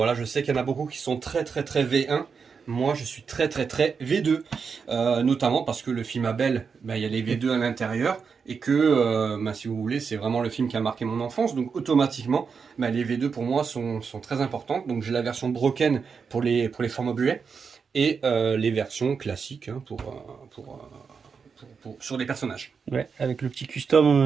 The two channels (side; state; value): left; quieter; 5.7 dB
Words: je sais qu'il y en a beaucoup qui sont très très très V1. Moi je suis très très très V2. Notamment parce que le film Abel, il y a les V2 à l'intérieur. Et que si vous voulez, c'est vraiment le film qui a marqué mon enfance. Donc automatiquement, les V2 pour moi sont très importantes. Donc j'ai la version broken pour les formats buets. Et les versions classiques hein, sur les personnages. Ouais, avec le petit